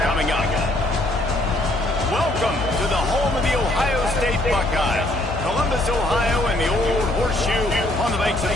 coming up. Welcome to the home of the Ohio State Buckeyes. Columbus, Ohio, and the old horseshoe on the banks of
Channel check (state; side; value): noise; left; hum, 9 dB below the sound